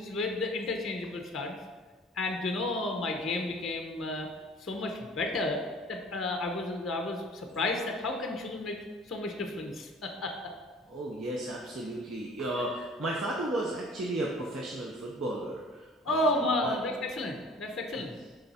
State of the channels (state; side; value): normal; both; correlation 0.48